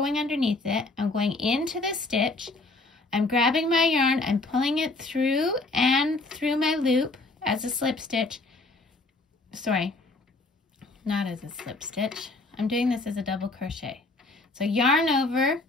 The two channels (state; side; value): quieter; right; 3.2 dB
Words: underneath it. I'm going into the stitch. I'm grabbing my yarn. I'm pulling it through and through my loop as a slip stitch. Sorry, not as a slip stitch. I'm doing this as a double crochet. So yarn over,